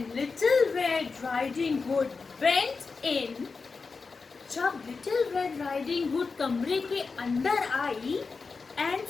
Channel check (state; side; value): quieter; right; 4.6 dB